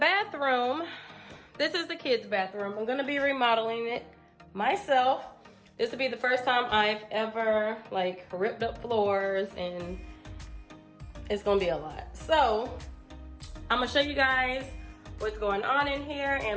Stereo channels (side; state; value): both; identical; correlation 1.00